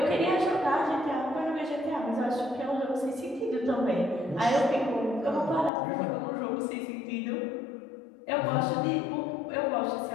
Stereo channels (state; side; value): drops out; right; at 5.7 s